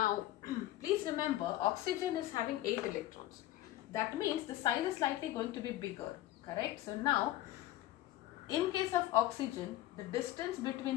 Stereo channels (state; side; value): quieter; right; 14.9 dB